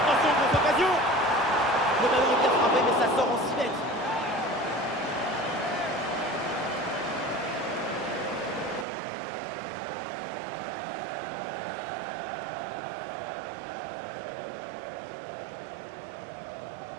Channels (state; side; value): drops out; left; at 8.8 s